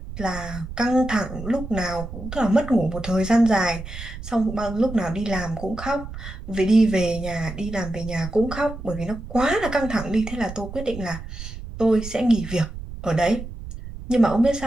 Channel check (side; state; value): right; noise; rumble, 11 dB below the sound